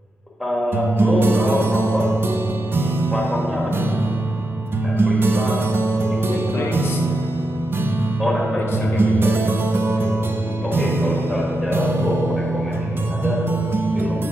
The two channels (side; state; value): both; normal; correlation 0.86